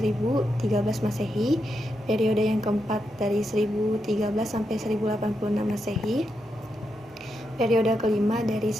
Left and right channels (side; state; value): both; normal; correlation 0.84